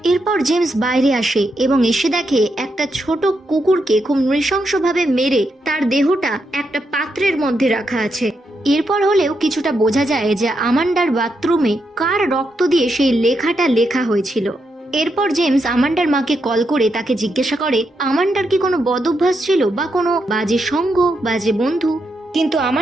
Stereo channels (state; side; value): normal; both; correlation 0.82